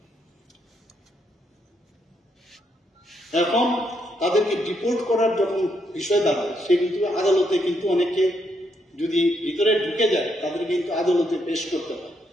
এখন তাদেরকে ডিপোর্ট করার যখন বিষয় দাঁড়ায়, সে কিন্তু আদালতে কিন্তু অনেকে যদি ভিতরে ঢুকে যায় তাদের কিন্তু আদালতে পেশ করতে হয়,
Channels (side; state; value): both; normal; correlation 0.76